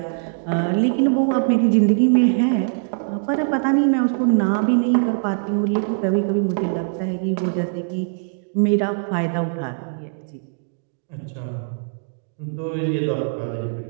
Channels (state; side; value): silent; left; digital silence